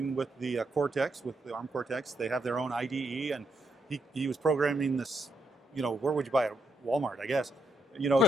with the Cortex, with the ARM Cortex. They have their own IDE, and he was programming this. Where would you buy it? Walmart, I guess.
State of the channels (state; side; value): normal; both; correlation 0.78